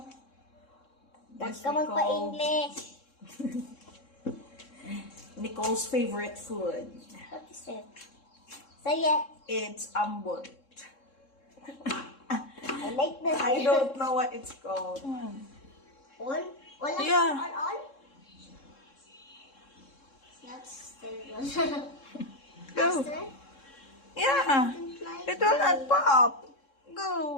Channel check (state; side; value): late; right; 3.7 ms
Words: Huwag this ka we call magpa-English. Nicole's favorite food. What is it? Say it. It's ambot. I like this. I don't know what it's called. All? All? Yeah. All? That's terrible. Go. Faster? Yeah. It will not pop.